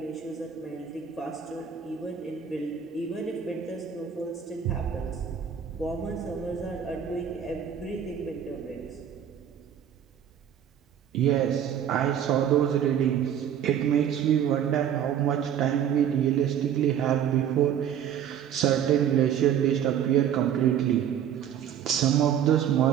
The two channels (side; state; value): left; quieter; 9.1 dB